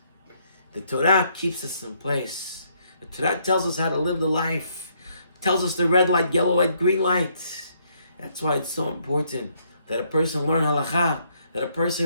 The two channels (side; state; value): both; inverted; correlation -0.70